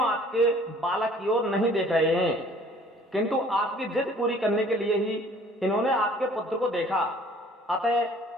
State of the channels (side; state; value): both; normal; correlation 0.54